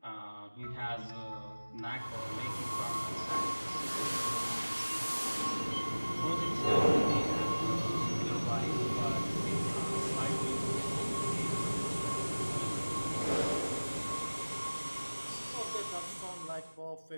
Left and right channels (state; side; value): inverted; both; correlation -1.00